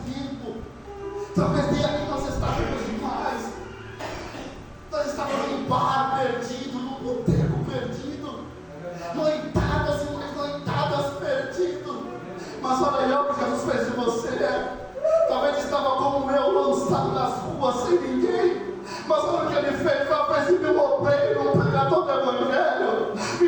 sem ninguém. Mas olha o que ele fez, fez de mim um obreiro, um pregador do Evangelho,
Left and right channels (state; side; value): identical; both; correlation 1.00